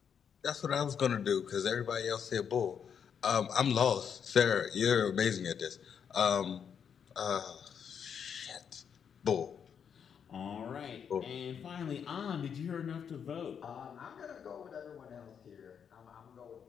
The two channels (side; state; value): right; quieter; 7.5 dB